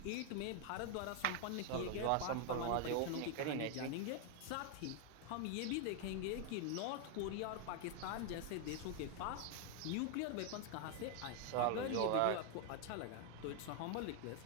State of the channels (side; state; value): both; different; correlation 0.00